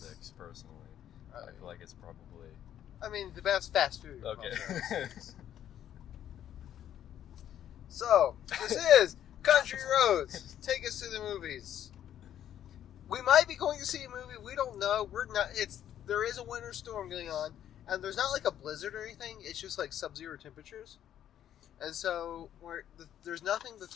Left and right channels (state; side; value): quieter; right; 10.7 dB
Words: personally. I feel like it's probably... I mean, the best fast food. Okay. So, this is Country Roads. Take us to the movies. We might be going to see a movie. We don't know. We're not. There is a winter storm going on, and there's not like a blizzard or anything. It's just like sub-zero temperatures, and so there's nothing. The